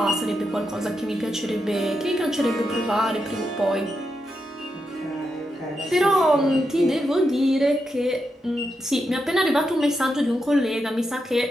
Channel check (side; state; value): both; normal; correlation 0.85